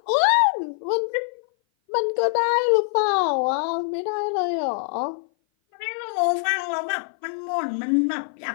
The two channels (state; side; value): silent; right; 57 dB below the other